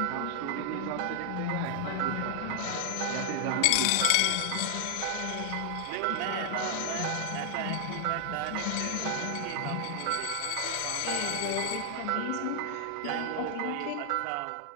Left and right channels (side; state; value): both; different; correlation 0.00